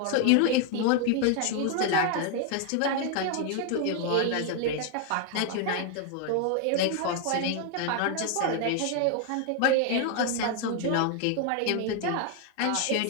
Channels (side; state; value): both; different; correlation 0.00